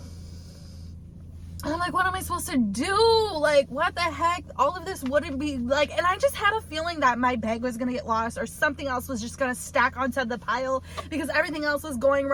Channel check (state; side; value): identical; both; correlation 1.00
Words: And I'm like, what am I supposed to do? Like, what the heck? All of this wouldn't be like, and I just had a feeling that my bag was gonna get lost, or something else was just gonna stack onto the pile, because everything else was going